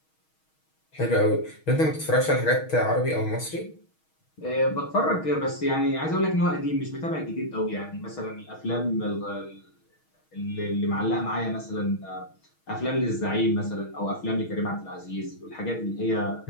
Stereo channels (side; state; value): right; late; 6.3 ms